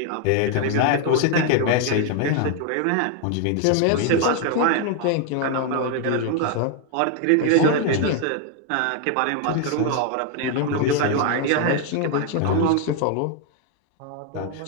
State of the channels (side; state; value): both; different; correlation 0.00